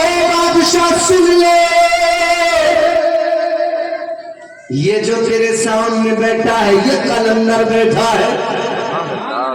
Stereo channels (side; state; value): both; identical; correlation 1.00